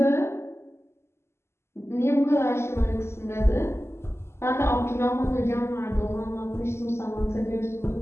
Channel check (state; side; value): late; right; 0.13 ms